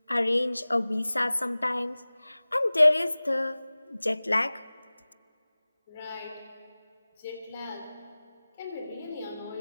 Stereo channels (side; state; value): both; inverted; correlation -0.99